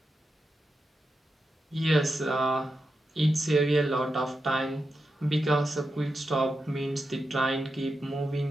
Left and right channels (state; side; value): normal; both; correlation 0.88